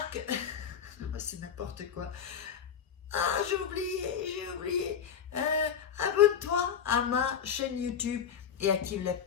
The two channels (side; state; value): right; quieter; 7.9 dB